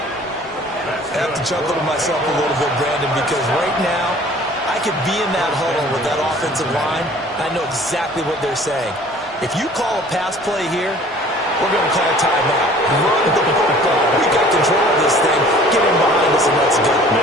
I have to chuckle to myself a little bit, Brandon, because right now, I could be in that huddle with that offensive line. I know exactly what they're saying. If you call a pass play here, we're going to call a timeout. Run the football. We got control of this thing. Get him behind us and let's go.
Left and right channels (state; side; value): normal; both; correlation 0.50